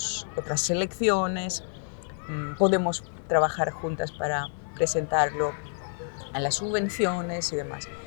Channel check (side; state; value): right; silent; digital silence